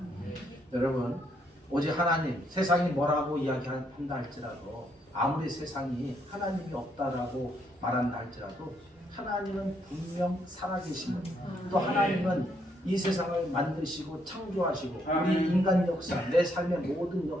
여러분 오직 하나님, 세상이 뭐라고 이야기한다 할지라도 아무리 세상이 하나님이 없다라고 말한다 할지라도 하나님은 분명 살아계심을 또 하나님은 이 세상을 만드시고 창조하시고 우리 인간 역사, 내 삶의 모든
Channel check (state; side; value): normal; both; correlation 0.73